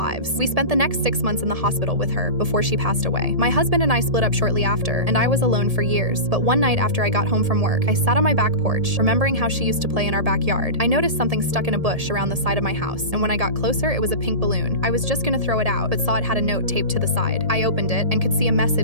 We spent the next 6 months in the hospital with her before she passed away. My husband and I split up shortly after, and I was alone for years. But one night after I got home from work, I sat on my back porch, remembering how she used to play in our backyard. I noticed something stuck in a bush around the side of my house, and when I got closer, it was a pink balloon. I was just gonna throw it out, but saw it had a note taped to the side. I opened it and could see a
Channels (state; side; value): late; left; 1.7 ms